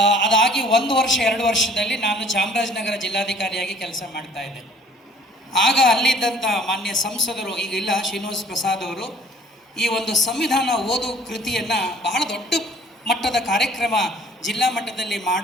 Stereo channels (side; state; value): both; normal; correlation 0.55